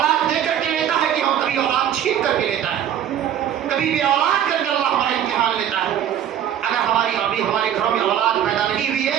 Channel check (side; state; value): left; quieter; 10.1 dB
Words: دے کر کے لیتا ہے کہ ہم کبھی اولاد چھین کر کے لیتا ہے، کبھی بھی اولاد کر کے اللہ ہمارا امتحان لیتا ہے۔ اگر ابھی ہمارے گھروں میں اولاد پیدا نہیں ہوئی